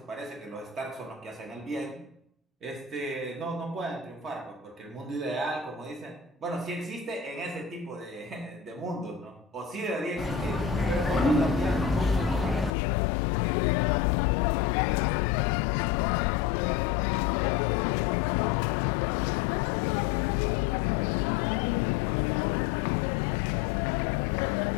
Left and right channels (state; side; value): drops out; right; at 12.7 s